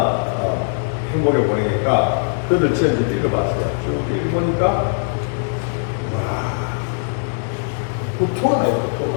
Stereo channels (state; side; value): silent; right; 66 dB below the other